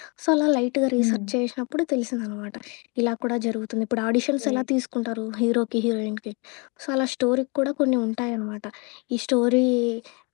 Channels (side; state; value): right; quieter; 31.3 dB